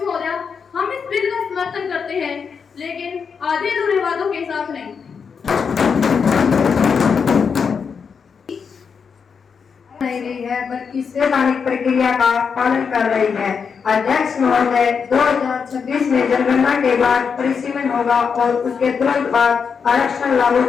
महोदया, हम इस बिल का समर्थन करते हैं, लेकिन आधे अधूरे वादों के साथ नहीं। नहीं रही है बल्कि संवैधानिक प्रक्रिया का पालन कर रही है। अध्यक्ष महोदय, 2026 में जनगणना के बाद परिसीमन होगा और उसके तुरंत बाद आरक्षण लागू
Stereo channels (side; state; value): right; quieter; 6.1 dB